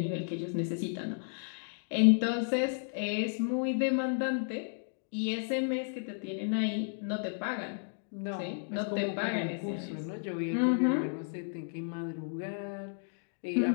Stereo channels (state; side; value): silent; right; digital silence